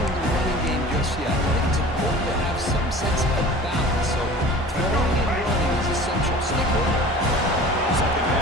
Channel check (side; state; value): both; normal; correlation 0.42